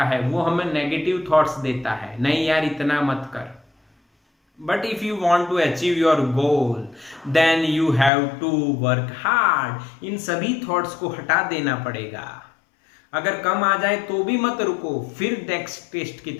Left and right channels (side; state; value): right; drops out; at 8.1 s